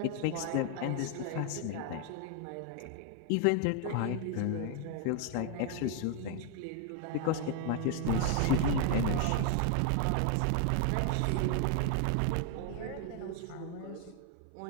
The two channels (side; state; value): both; different; correlation 0.00